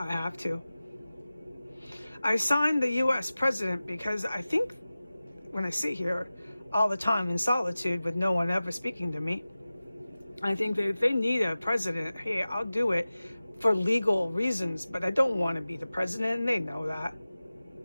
have to. I signed the U.S. president because I think when I sit here all the time in solitude with no one ever speaking to me, I think that if they need a president, hey, I'll do it for legal reasons, but I don't want to be the president, and they know that.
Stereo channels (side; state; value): both; inverted; correlation -0.96